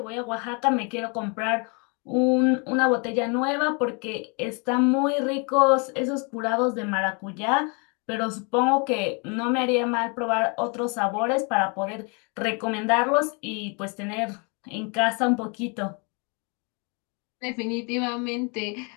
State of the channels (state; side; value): quieter; right; 33.7 dB